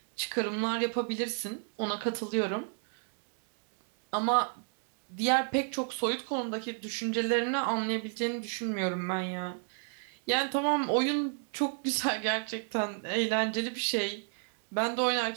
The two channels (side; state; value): left; silent; 56 dB below the other